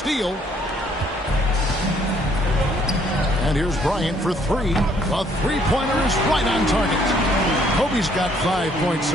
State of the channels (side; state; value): both; normal; correlation 0.65